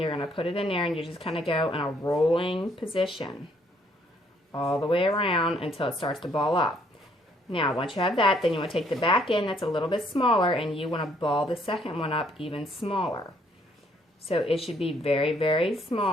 going to put it in there, and you just kind of go in a rolling position all the way around until it starts to ball up. Now, once you have that, then you want to take the back end that's a little bit smaller, and you want to ball the second one up even smaller. So it should be very, very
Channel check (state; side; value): normal; both; correlation 0.66